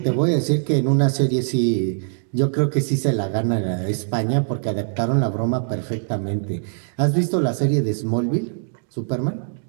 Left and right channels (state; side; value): silent; left; digital silence